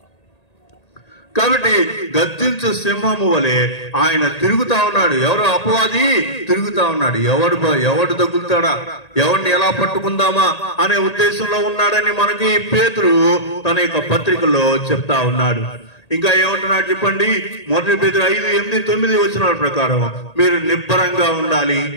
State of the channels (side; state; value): right; late; 1.8 ms